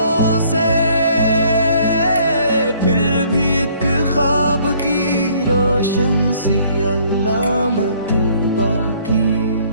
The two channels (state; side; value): inverted; both; correlation -0.60